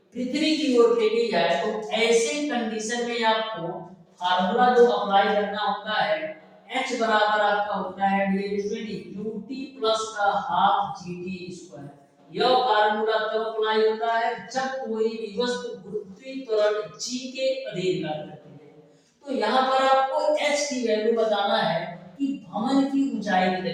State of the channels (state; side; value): identical; both; correlation 1.00